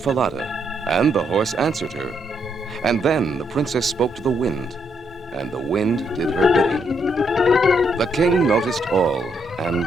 and the horse answered her. And then the princess spoke to the wind, and the wind did her bidding. The king noticed all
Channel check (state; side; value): normal; both; correlation 0.76